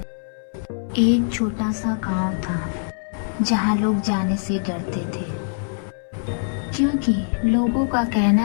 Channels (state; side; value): silent; right; 63 dB below the other